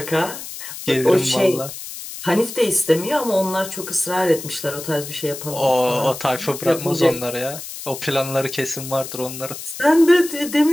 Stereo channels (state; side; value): noise; left; hiss, 10 dB below the sound